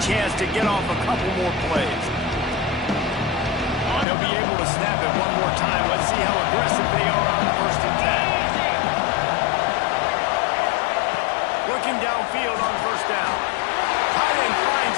chance to get off a couple more plays. They'll be able to snap it one more time. Let's see how aggressive they are on 1st and 10. Looking downfield on 1st down. Tight end finds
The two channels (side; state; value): right; drops out; at 4.0 s